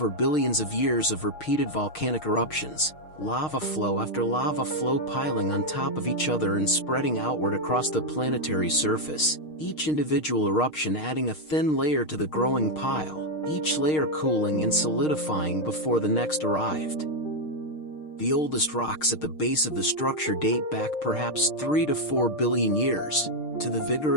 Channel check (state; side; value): late; right; 6.5 ms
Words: billions of years of repeated volcanic eruptions, lava flow after lava flow piling on top of each other and spreading outward across the planetary surface, each individual eruption adding a thin layer to the growing pile, each layer cooling and solidifying before the next arrived. The oldest rocks at the base of the structure date back perhaps 3 to 4 billion years, to the